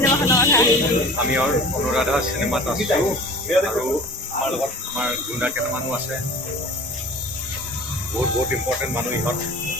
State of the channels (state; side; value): normal; both; correlation 0.42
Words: আমি অনুৰাধা চিনেমাত আছো আৰু আমাৰ লগত আমাৰ গুণ্ডা কেইটামানো আছে বহুত ইম্পৰ্টেণ্ট মানুহ ইহঁত